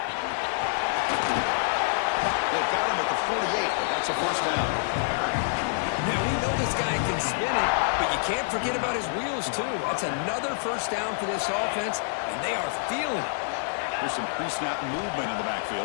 They've got him at the 48, but that's a first down. Now, we know this guy can spin it, but you can't forget about his wheels, too. That's another first down for this offense, and they are feeling it. There's some pre-snap movement in the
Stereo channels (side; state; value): right; silent; 60 dB below the other